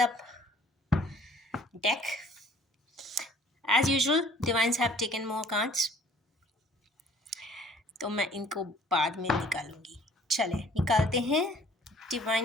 the deck. As usual divines have taken more cards, तो मैं इनको बाद में निकालूंगी। चले निकालते हैं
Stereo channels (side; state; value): both; normal; correlation 0.54